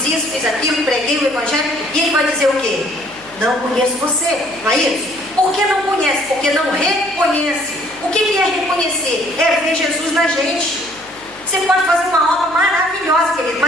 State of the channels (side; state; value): left; noise; hum, 26 dB below the sound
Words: isso, fiz aquilo, preguei o Evangelho, e Ele vai dizer o quê? Não conheço você, não é isso? Por que não conhece? Porque não reconhece. O que é reconhecer? É ver Jesus na gente. Você pode fazer uma obra maravilhosa, querido,